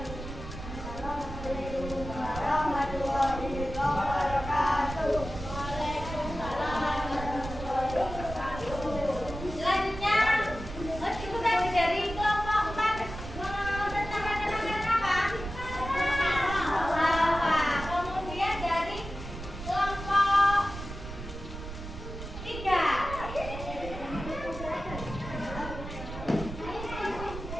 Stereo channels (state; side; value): noise; right; rumble, 9 dB below the sound